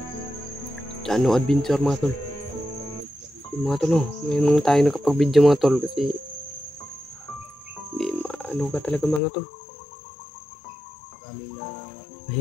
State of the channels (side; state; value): right; drops out; at 9.2 s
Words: Chano Adventure mga tol. Mga tol, ngayon tayo nakapag-video mga tol kasi ano ka talaga mga tol.